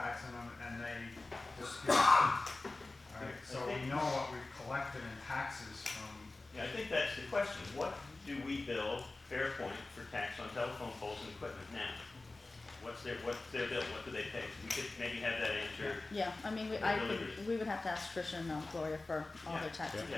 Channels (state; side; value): quieter; right; 3.2 dB